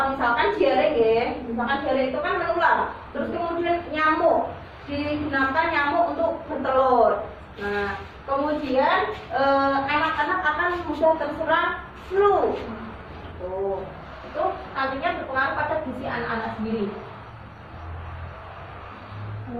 Misalkan diare ya, misalkan diare itu kan menular. Terus kemudian nyamuk, digunakan nyamuk untuk bertelur. Nah, kemudian anak-anak akan mudah terserang flu. Tuh, itu nantinya berpengaruh pada gizi anak-anak sendiri.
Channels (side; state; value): both; identical; correlation 1.00